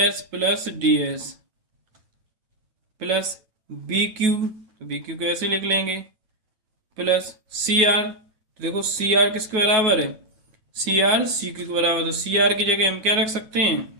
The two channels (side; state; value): left; late; 9.3 ms